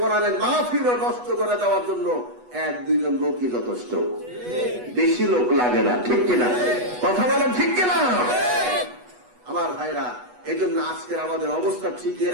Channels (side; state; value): left; late; 8.2 ms